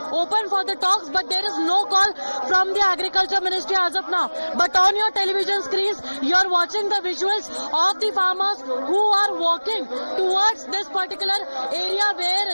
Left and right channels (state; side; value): inverted; both; correlation -1.00